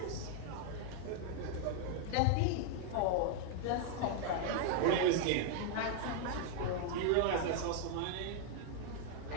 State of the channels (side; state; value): both; different; correlation 0.00